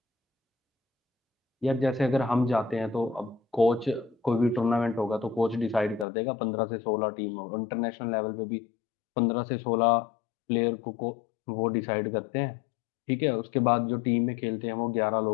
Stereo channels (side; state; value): right; drops out; at 6.1 s